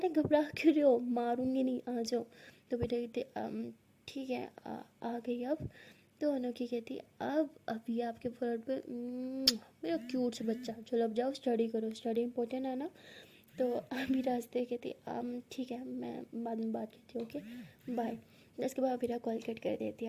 घबरा क्यों रहे हो, मारूंगी नहीं, आ जाओ। तो वीरा कहती ठीक है आ गई अब। तो अनोखी कहती अब अभी आपके फोन पे मेरा क्यूट सा बच्चा, चलो अब जाओ स्टडी करो, स्टडी इंपॉर्टेंट है ना। तो अमीरा हंसते कहती ठीक है मैं बाद में बात करती हूँ, ओके बाय। उसके बाद अमीरा कॉल कट कर देती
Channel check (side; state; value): both; identical; correlation 1.00